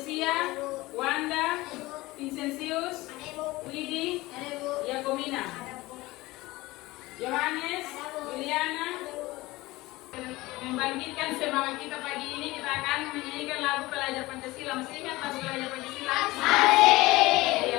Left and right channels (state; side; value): quieter; right; 19.9 dB